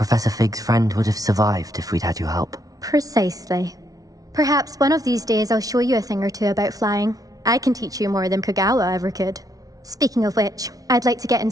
Fig's friend would have survived if we'd had your help. Precisely. Perhaps one of these days I'll show you a thing or two about flying. I can teach you more than Kogawa ever could. Speaking of which, I'd like to get in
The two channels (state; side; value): late; left; 0.18 ms